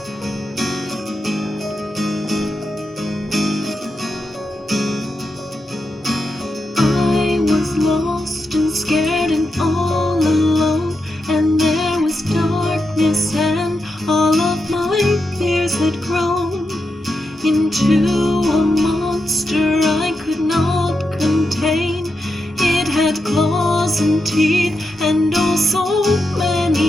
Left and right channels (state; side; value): normal; both; correlation 0.86